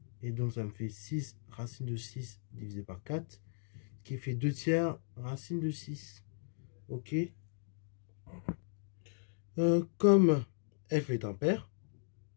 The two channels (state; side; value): silent; right; digital silence